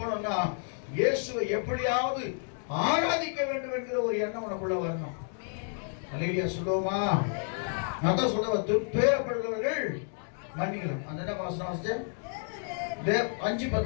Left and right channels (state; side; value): silent; right; 58 dB below the other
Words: இயேசுவை எப்படியாவது ஆராதிக்க வேண்டும் என்கிற ஒரு எண்ணம் உனக்குள்ள வரணும். ஹல்லேலூயா சொல்லுவோமா? நான் தான் சொல்லுவேன், துன்பப்படுகிறவர்கள் மன்னிக்கலாம். அந்த என்ன வாசனம் வாசிச்ச?